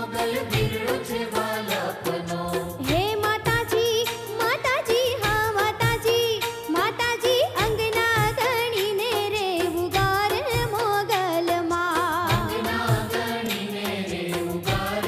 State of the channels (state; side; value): identical; both; correlation 1.00